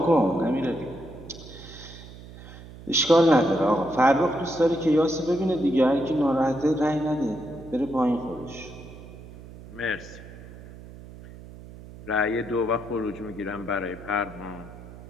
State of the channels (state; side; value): noise; right; hum, 17 dB below the sound